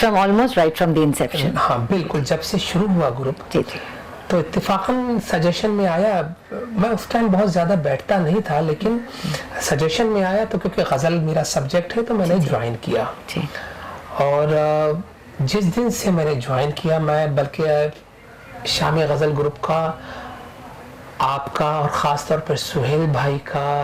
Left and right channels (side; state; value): both; identical; correlation 1.00